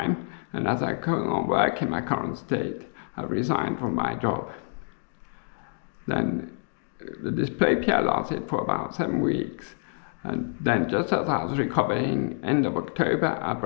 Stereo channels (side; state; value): right; silent; digital silence